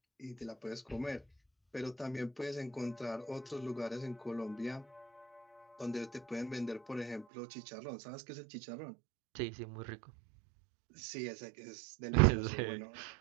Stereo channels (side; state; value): left; drops out; at 7.2 s